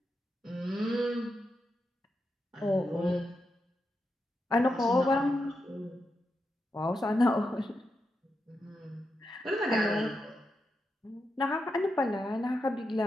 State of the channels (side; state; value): both; normal; correlation 0.86